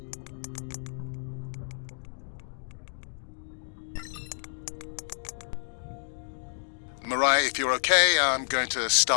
Mariah, if you're okay, I'm going to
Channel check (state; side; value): silent; right; digital silence